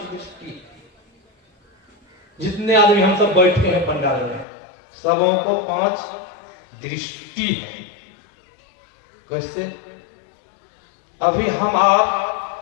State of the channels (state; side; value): drops out; right; at 4.5 s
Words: दृष्टि। जितने आदमी हम सब बैठे हैं पंडाल में, सबों को 5 दृष्टि है। कैसे? अभी हम